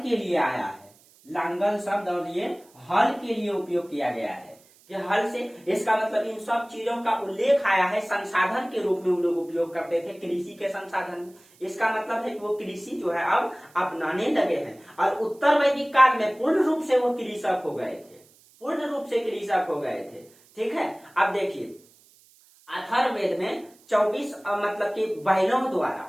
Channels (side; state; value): right; noise; hiss, 29 dB below the sound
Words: के लिए आया है। लांगल शब्द और ये हल के लिए उपयोग किया गया है कि हल से, इसका मतलब इन सब चीजों का उल्लेख आया है संसाधन के रूप में वो लोग उपयोग करते थे कृषि के संसाधन। इसका मतलब है कि वो कृषि जो है अब अपनाने लगे हैं, और उत्तर वैदिक काल में पूर्ण रूप से वो कृषक हो गए थे, पूर्ण रूप से कृषक हो गए थे। ठीक है, अब देखिए अथर्ववेद में 24 मतलब कि बैलों